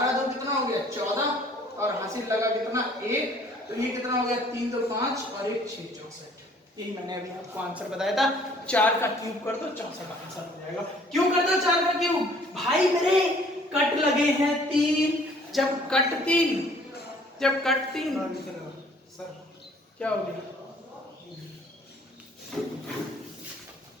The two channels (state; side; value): normal; both; correlation 0.57